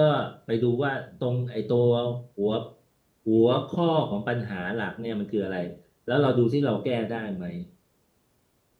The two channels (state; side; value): identical; both; correlation 1.00